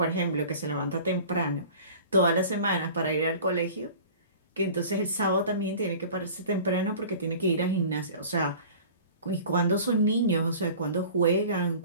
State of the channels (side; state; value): both; inverted; correlation -0.42